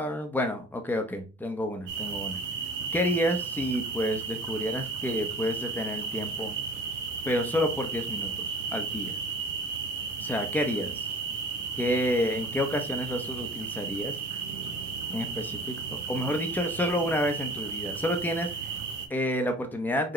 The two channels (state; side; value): normal; both; correlation 0.44